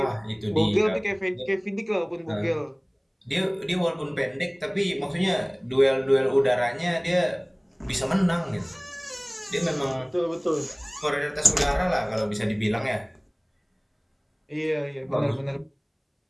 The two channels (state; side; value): identical; both; correlation 1.00